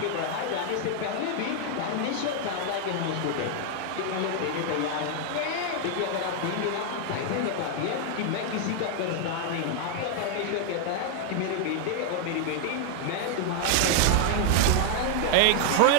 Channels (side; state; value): both; different; correlation 0.00